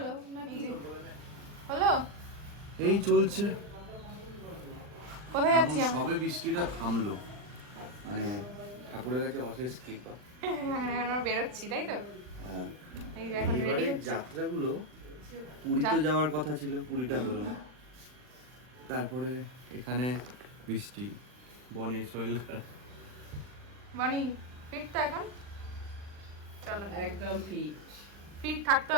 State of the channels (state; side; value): late; left; 40 ms